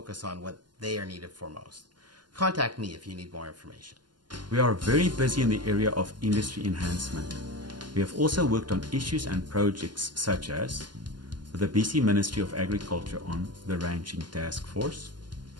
on what they are needed for most. Contact me if you need more information. We are very busy in the area of industry enhancement. We have also worked on issues and projects such as with the BC Ministry of Agriculture on the Ranching Task Force,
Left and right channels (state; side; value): late; left; 0.71 ms